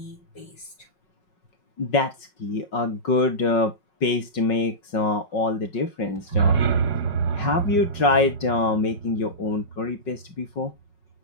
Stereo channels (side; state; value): right; late; 5.4 ms